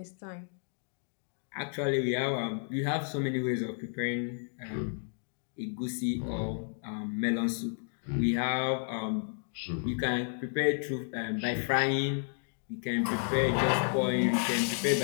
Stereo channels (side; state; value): right; silent; 56 dB below the other